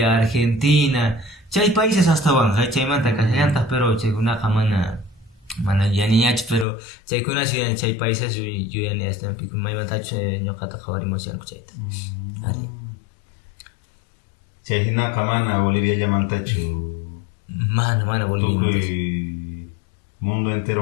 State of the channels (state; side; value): drops out; right; at 6.7 s